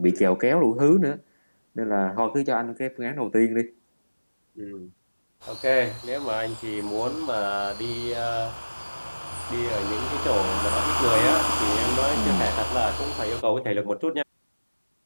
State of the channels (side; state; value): both; inverted; correlation -1.00